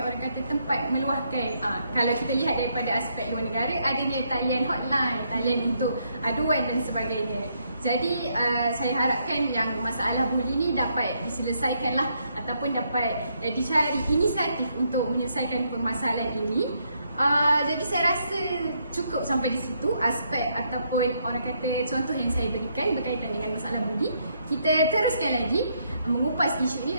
kata tempat meluahkan. Kalau kita lihat daripada aspek luar negara, adanya talian hotline, talian untuk aduan dan sebagainya. Jadi saya harapkan yang masalah buli ni dapat diselesaikanlah ataupun dapat dicari inisiatif untuk menyelesaikan permasalahan ini. Jadi saya rasa cukup sampai di situ aspek ataupun orang kata contoh yang saya berikan berkaitan dengan masalah budi. Kita teruskan lagi mengupas isu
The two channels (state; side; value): inverted; both; correlation -0.75